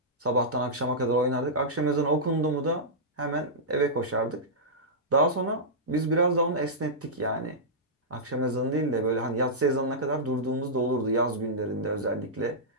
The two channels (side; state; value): both; normal; correlation -0.13